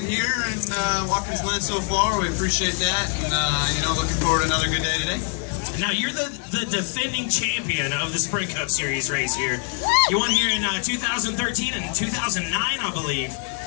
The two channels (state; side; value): quieter; right; 37.9 dB